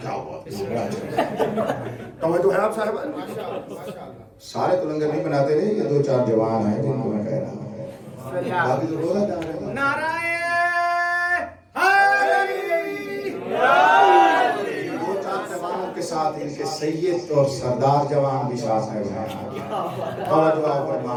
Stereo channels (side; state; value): both; identical; correlation 1.00